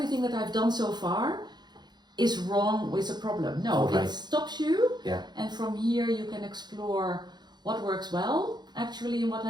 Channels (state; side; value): late; left; 0.21 ms